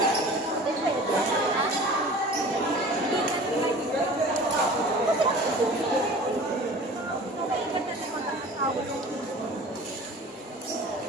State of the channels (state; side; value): normal; both; correlation 0.42